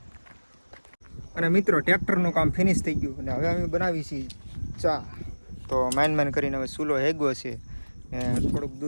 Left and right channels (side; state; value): both; inverted; correlation -1.00